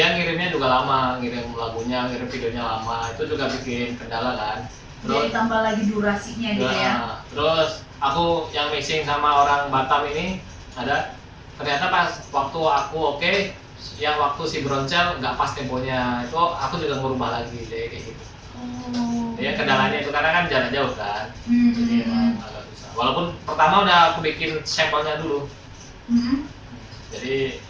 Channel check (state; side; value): identical; both; correlation 1.00